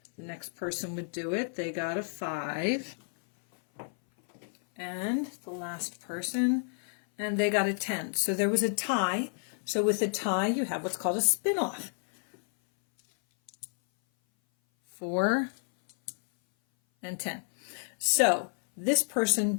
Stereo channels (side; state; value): right; silent; 57 dB below the other